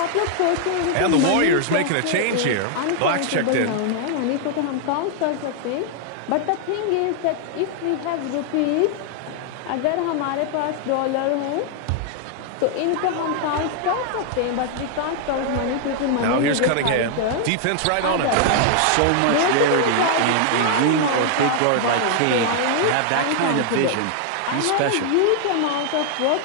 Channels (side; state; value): both; different; correlation 0.00